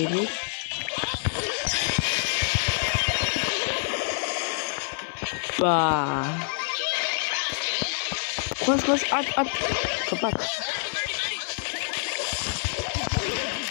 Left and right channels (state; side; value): silent; right; 60 dB below the other